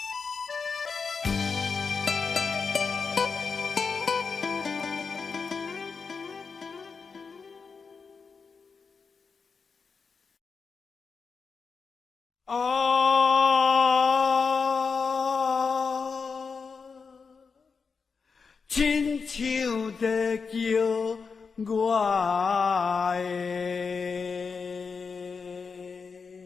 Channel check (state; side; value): quieter; right; 5.2 dB